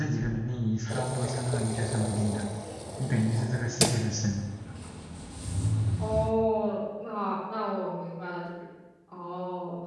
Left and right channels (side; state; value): both; identical; correlation 1.00